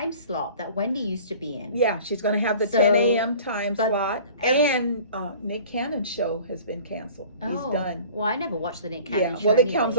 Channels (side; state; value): both; inverted; correlation -0.45